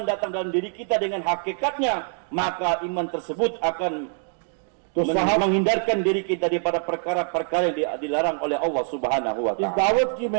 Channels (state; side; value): silent; left; 57 dB below the other